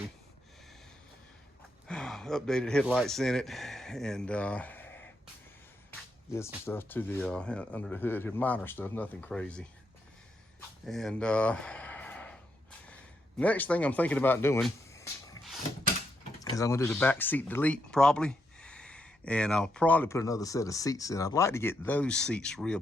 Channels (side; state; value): both; normal; correlation 0.80